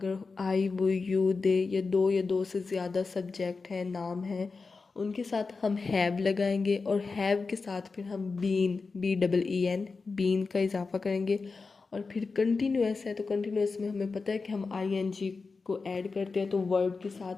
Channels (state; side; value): quieter; right; 4.3 dB